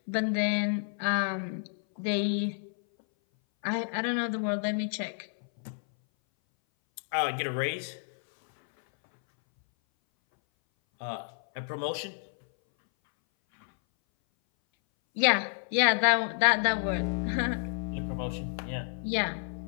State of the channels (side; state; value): right; silent; 58 dB below the other